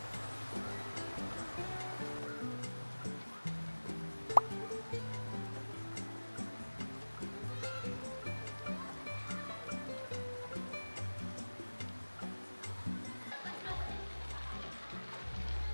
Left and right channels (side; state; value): both; inverted; correlation -1.00